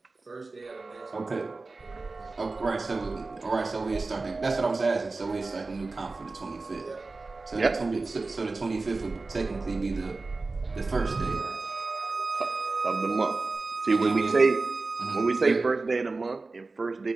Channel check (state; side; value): quieter; left; 3.6 dB